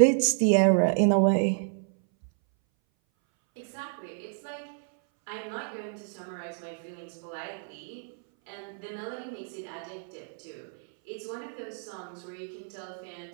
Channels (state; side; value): silent; left; 58 dB below the other